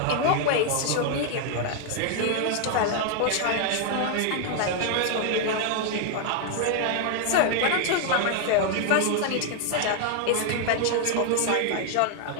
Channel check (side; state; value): both; different; correlation 0.00